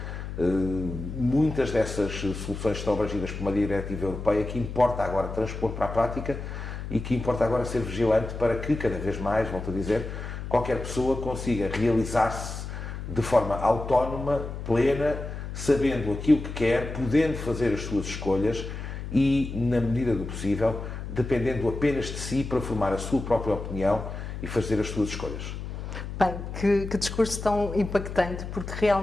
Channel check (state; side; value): noise; left; hum, 7 dB below the sound